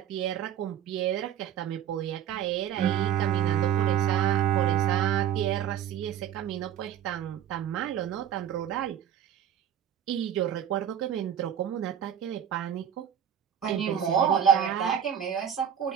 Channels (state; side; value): quieter; left; 9.6 dB